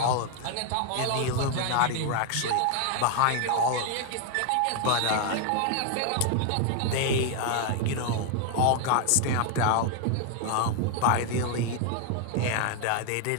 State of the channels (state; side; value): different; both; correlation 0.00